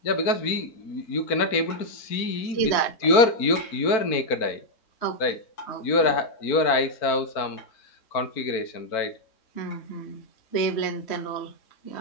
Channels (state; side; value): late; right; 4.4 ms